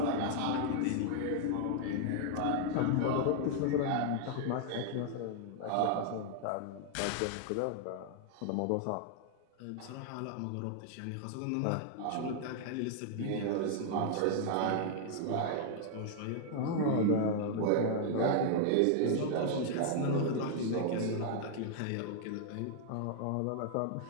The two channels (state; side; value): different; both; correlation -0.01